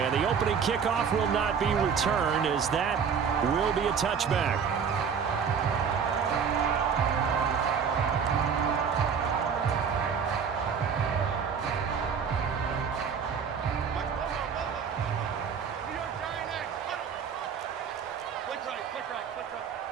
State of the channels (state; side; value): quieter; left; 6.7 dB